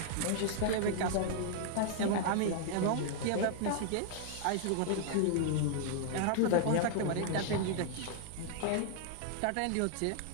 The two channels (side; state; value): both; different; correlation 0.00